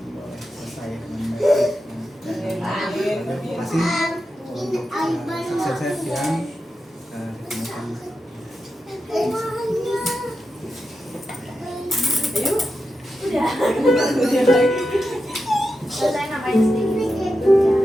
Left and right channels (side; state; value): both; normal; correlation 0.89